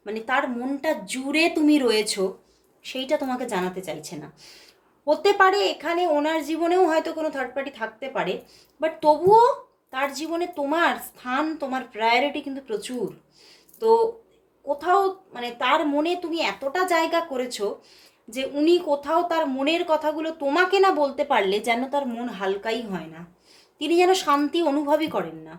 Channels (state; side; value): identical; both; correlation 1.00